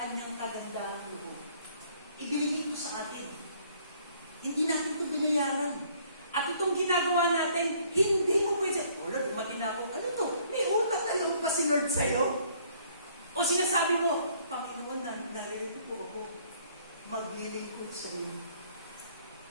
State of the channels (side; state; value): both; inverted; correlation -0.61